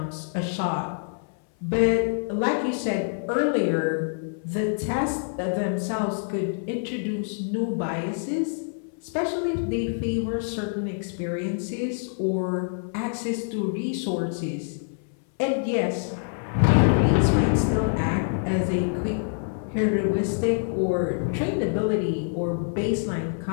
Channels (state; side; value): silent; right; 61 dB below the other